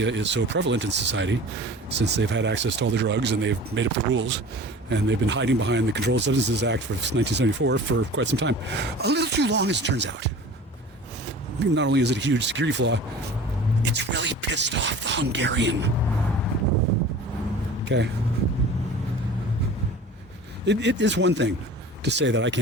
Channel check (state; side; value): normal; both; correlation 0.41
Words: is so prevalent in society, since they've had access to all the drugs and they've made up the rules, and they've been hiding behind the Controlled Substances Act of 1974 for quite some time. A little too long, as it turns out. Not only is it a huge security flaw, it's really pissed off the Hungarian. Okay? It is one thing to say that I